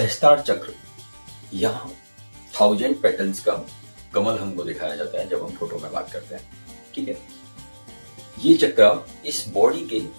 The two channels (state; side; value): inverted; both; correlation -1.00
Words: चक्र, यहाँ 1000 पेटल्स का कमल हमको दिखाया जाता है जब हम फोटो में बात करते हैं, ठीक है। ये चक्र इस बॉडी के